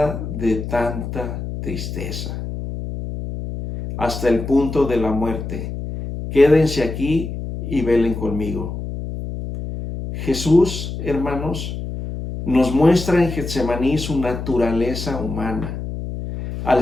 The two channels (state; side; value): noise; left; hum, 7 dB below the sound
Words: de tanta tristeza, hasta el punto de la muerte. Quédense aquí y velen conmigo. Jesús, hermanos, nos muestra en Getsemaní su naturaleza humana,